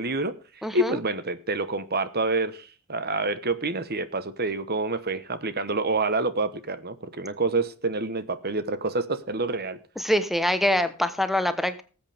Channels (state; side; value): normal; both; correlation 0.16